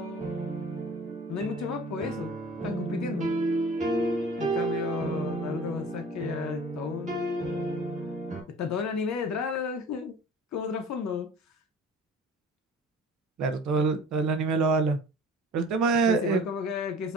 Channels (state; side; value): normal; both; correlation 0.44